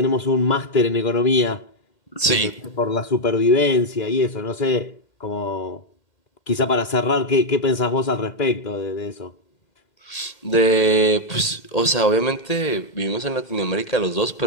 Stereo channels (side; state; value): right; late; 2.0 ms